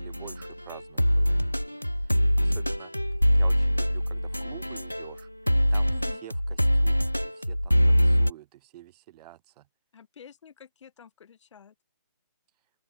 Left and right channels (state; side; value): inverted; both; correlation -0.99